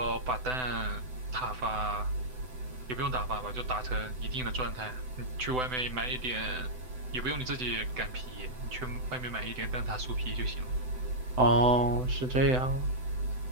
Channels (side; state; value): left; late; 7.9 ms